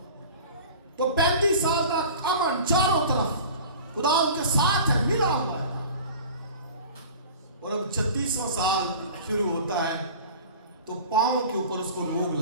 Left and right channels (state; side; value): inverted; both; correlation -0.40